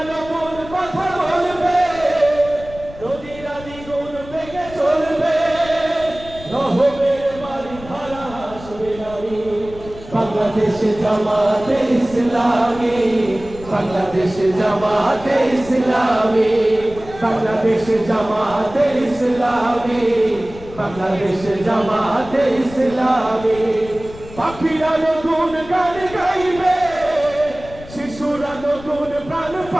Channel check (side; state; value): left; noise; rumble, 16 dB below the sound